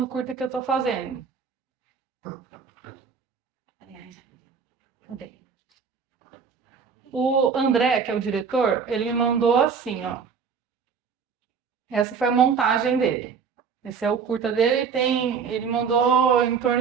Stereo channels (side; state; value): left; quieter; 6.1 dB